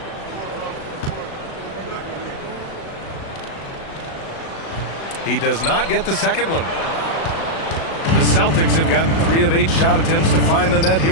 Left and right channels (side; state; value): right; late; 36 ms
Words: He does not get the second one. The Celtics have gotten 3 of 8 shot attempts to find the net